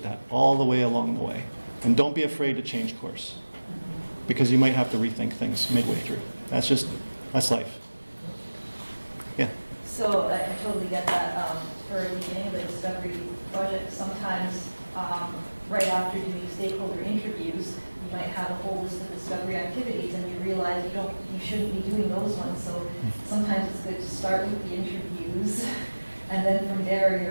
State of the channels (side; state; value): both; inverted; correlation -1.00